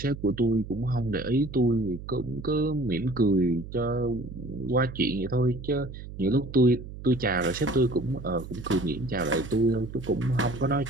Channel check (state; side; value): noise; right; hum, 12 dB below the sound